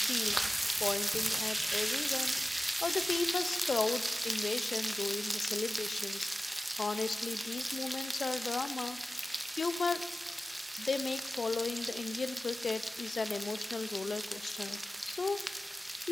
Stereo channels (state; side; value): normal; both; correlation 0.96